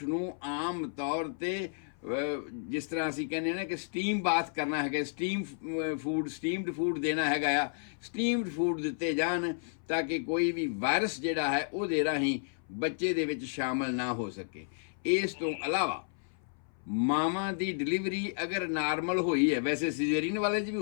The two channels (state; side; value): silent; right; 56 dB below the other